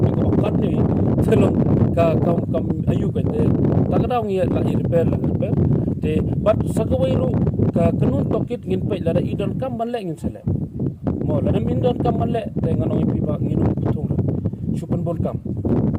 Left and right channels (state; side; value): identical; both; correlation 1.00